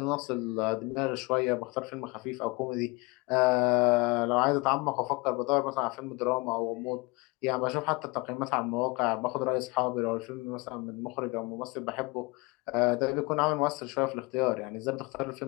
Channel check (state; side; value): quieter; right; 25.4 dB